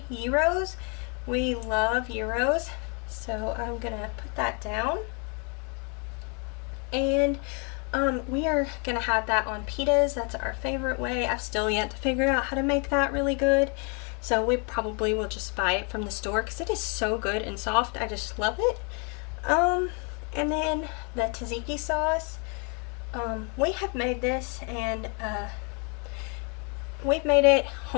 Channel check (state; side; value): quieter; right; 35.9 dB